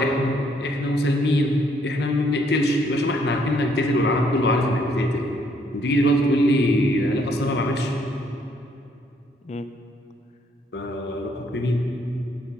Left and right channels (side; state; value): both; normal; correlation 0.68